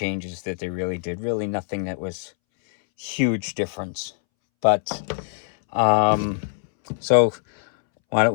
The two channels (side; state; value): right; silent; 63 dB below the other